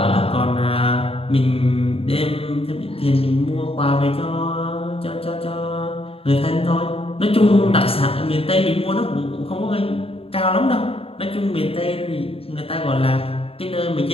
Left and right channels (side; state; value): right; late; 0.27 ms